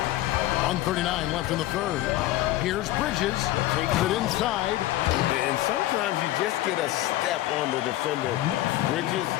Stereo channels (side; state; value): right; quieter; 15.5 dB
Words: 1:39 left in the third. Here's Bridges. Takes it inside. And sometimes you just get a step on the defender. Bridges